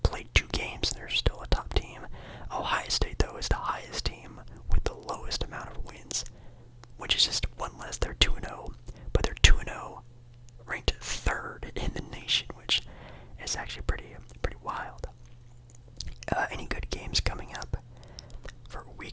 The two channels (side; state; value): both; identical; correlation 1.00